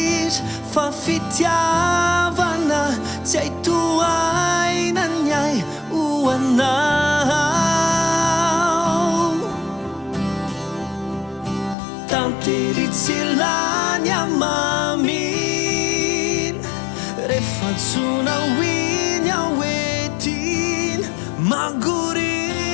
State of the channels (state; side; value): drops out; right; at 11.8 s